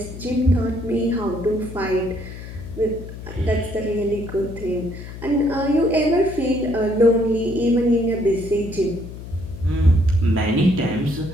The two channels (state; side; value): noise; left; hum, 12 dB below the sound